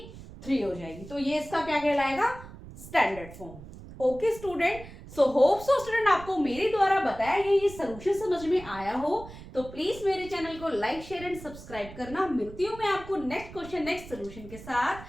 3 हो जाएगी। तो ये इसका क्या कहलाएगा, standard form. Okay student, so hope so student आपको मेरे द्वारा बताया गया ये सोल्यूशन समझ में आया हो, तो प्लीज मेरे चैनल को लाइक शेयर एंड सब्सक्राइब करना। मिलती हूँ मैं आपको नेक्स्ट क्वेश्चन नेक्स्ट सोल्यूशन के साथ,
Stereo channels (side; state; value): right; noise; rumble, 15 dB below the sound